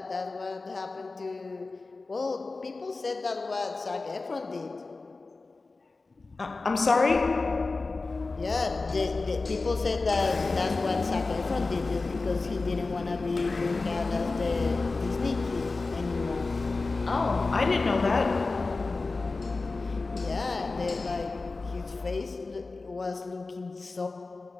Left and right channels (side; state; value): right; quieter; 3.7 dB